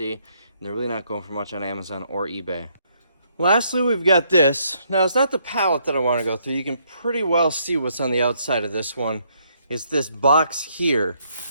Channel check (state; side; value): inverted; both; correlation -0.71